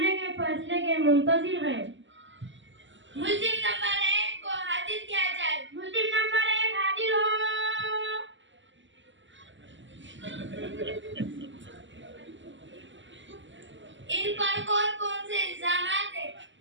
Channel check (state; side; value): late; left; 0.54 ms